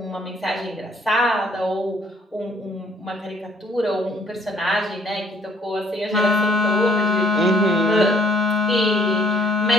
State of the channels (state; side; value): normal; both; correlation 0.63